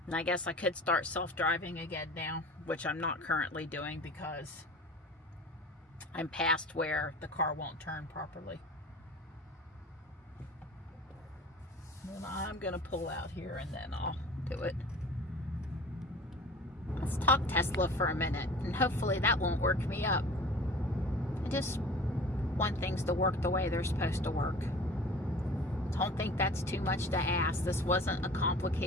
And I guess I could start self-driving again now, which I'm not currently doing because I'm past where the car won't turn properly. And I'm gonna pull out here and then I'll do it. Let's talk Tesla for a minute, and hopefully that won't work me up. I just want things to work the way they're supposed to work. Don't think that's too much to ask. This wasn't a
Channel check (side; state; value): both; normal; correlation 0.42